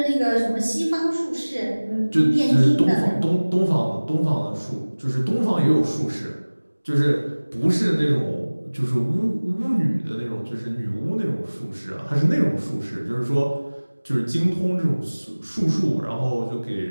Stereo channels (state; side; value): inverted; both; correlation -1.00